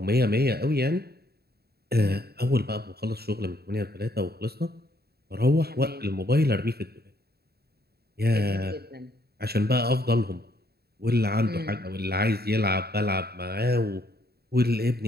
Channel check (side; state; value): left; late; 0.46 ms